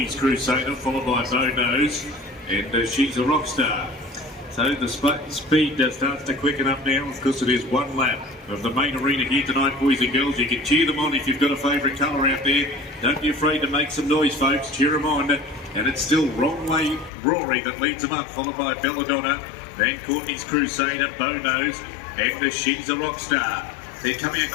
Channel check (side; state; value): right; drops out; at 17.1 s